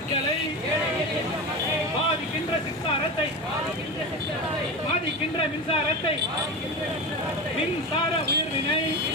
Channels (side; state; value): both; normal; correlation 0.23